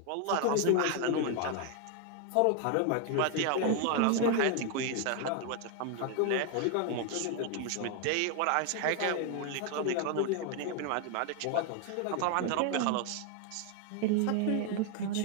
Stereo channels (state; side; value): different; both; correlation 0.00